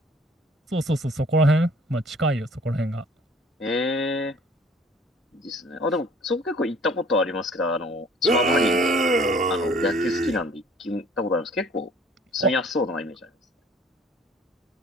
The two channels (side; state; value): both; normal; correlation 0.54